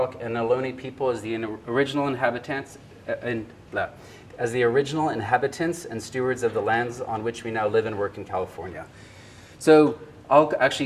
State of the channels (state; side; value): identical; both; correlation 1.00